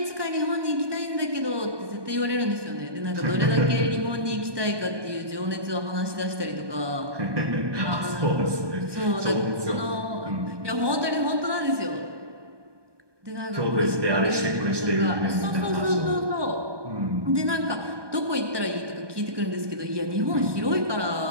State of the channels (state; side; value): late; left; 1.2 ms